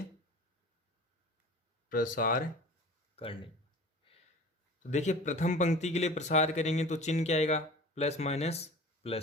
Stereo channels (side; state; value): both; normal; correlation 0.40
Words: प्रसार करने। तो देखिए प्रथम पंक्ति के लिए प्रसार करेंगे तो चिन्ह क्या आएगा? प्लस माइनस